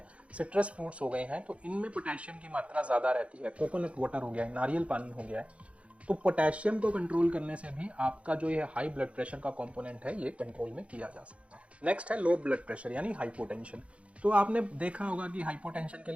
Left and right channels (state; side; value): late; left; 0.062 ms